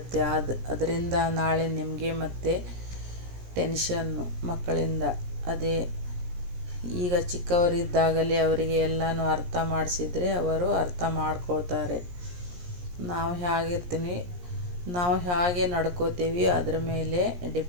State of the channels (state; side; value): late; left; 17 ms